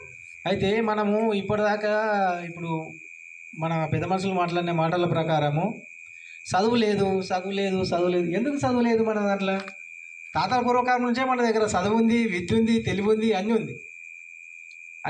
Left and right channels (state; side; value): identical; both; correlation 1.00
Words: అయితే మనము ఇప్పటిదాకా ఇప్పుడు మన పెద్ద మనుషులు మాట్లాడిన మాటల ప్రకారము చదువు లేదు. ఎందుకు చదువు లేదు మన దాంట్లో? తాతల పూర్వకాలం నుంచే మన దగ్గర చదువు ఉంది, విద్య ఉంది, తెలివి ఉంది, అన్నీ